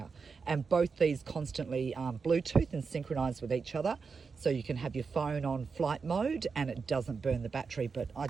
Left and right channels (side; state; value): left; quieter; 5.1 dB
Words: And both these constantly Bluetooth and synchronize with each other. So you can have your phone on flight mode and it doesn't burn the battery, but I